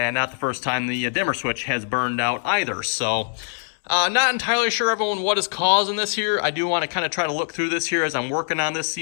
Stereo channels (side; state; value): right; silent; digital silence